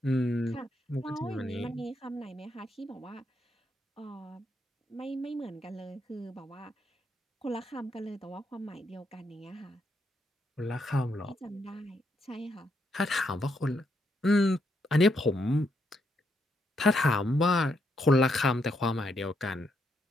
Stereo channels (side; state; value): both; normal; correlation 0.78